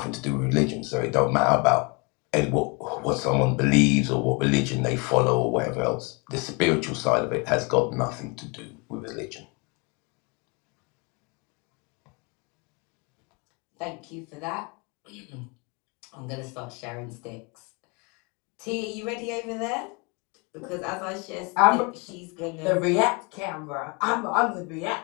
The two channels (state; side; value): quieter; right; 30.7 dB